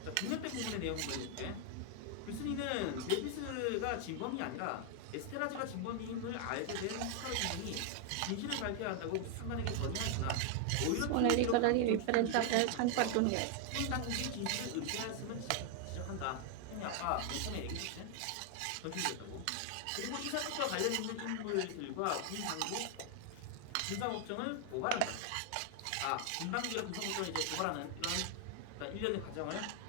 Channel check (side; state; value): both; different; correlation 0.00